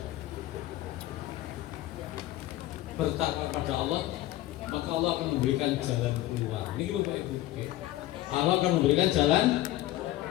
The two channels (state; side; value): quieter; right; 15.3 dB